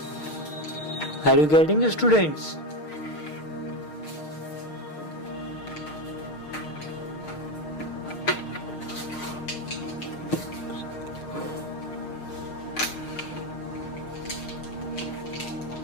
Are you getting it, students?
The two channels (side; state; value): right; late; 6.5 ms